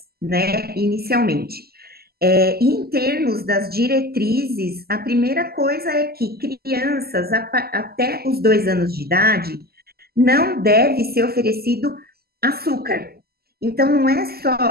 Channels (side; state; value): left; late; 0.45 ms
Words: né, inicialmente. E em termos das diretrizes, a primeira coisa é que crianças até os 2 anos de idade não deve ser oferecido açúcar. Então, não é